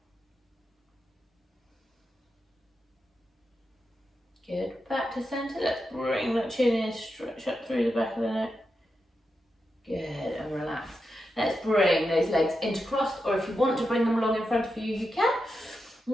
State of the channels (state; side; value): normal; both; correlation 0.88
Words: Good, back to centre. Let's bring that chin in, stretch up through the back of the neck. Good, and relax. Let's bring those legs intercrossed, or if you want to bring them along in front of you, you can.